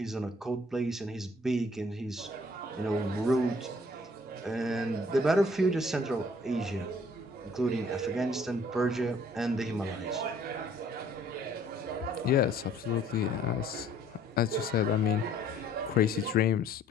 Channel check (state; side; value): normal; both; correlation 0.58